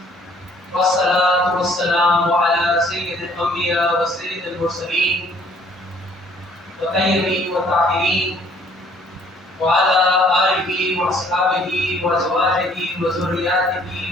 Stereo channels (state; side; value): normal; both; correlation 0.59